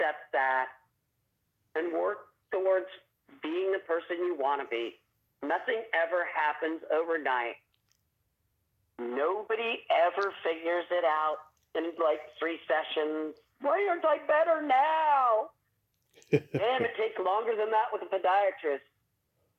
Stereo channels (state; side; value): identical; both; correlation 1.00